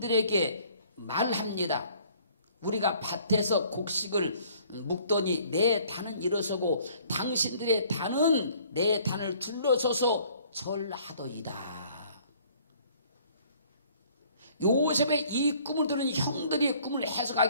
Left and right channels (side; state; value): both; inverted; correlation -0.58